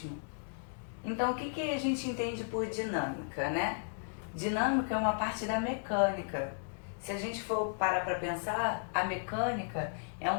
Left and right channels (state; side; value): silent; right; digital silence